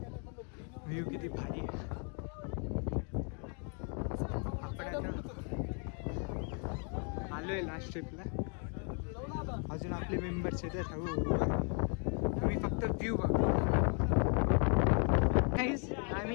व्ह्यू किती भारी. आपण आता आलोय लास्ट ट्रिपला. अजून आपले मेंबर्स येतात. आम्ही फक्त व्ह्यू बघू.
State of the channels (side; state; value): right; quieter; 38.4 dB